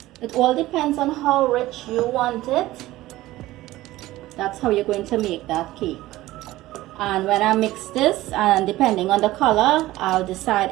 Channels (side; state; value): left; quieter; 16.8 dB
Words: It all depends on how rich you want it. That's how you're going to make that cake. And when I mix this, and depending on the color, I'll